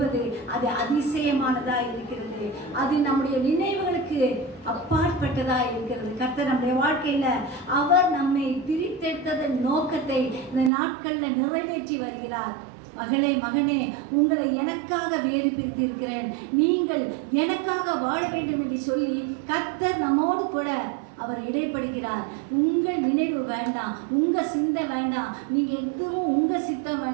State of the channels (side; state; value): left; drops out; at 10.7 s